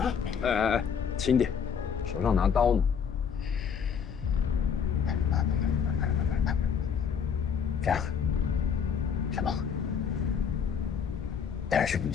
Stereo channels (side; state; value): right; quieter; 7.1 dB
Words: 哎，轻点，手上拿刀呢。这样，什么？带着士兵